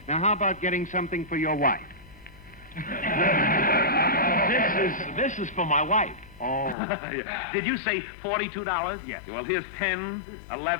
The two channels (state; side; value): drops out; right; at 6.8 s